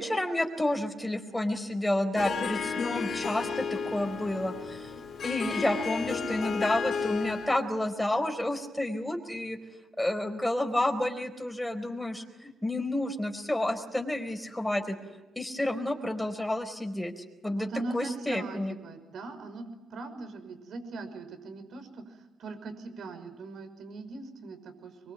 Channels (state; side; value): normal; both; correlation 0.92